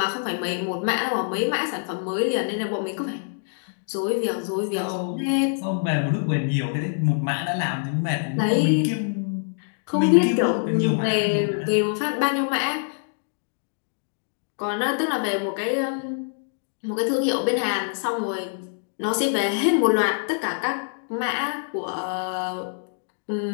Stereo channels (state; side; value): silent; right; digital silence